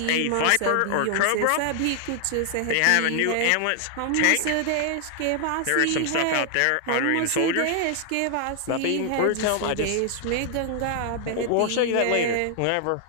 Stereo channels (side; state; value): both; different; correlation 0.00